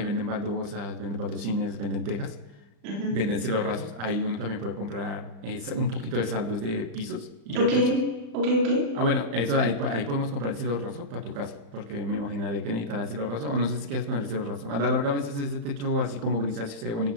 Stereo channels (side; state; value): left; late; 35 ms